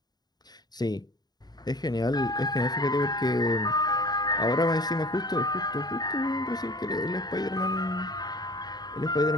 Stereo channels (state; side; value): late; right; 0.20 ms